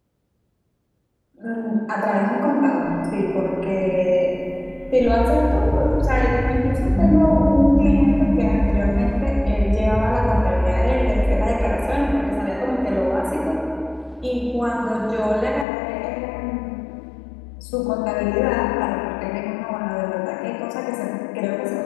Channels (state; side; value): drops out; right; at 15.7 s